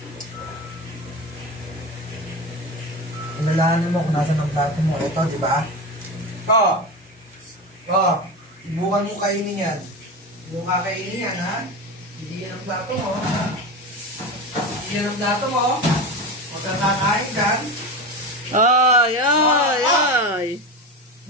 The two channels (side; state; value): both; normal; correlation 0.23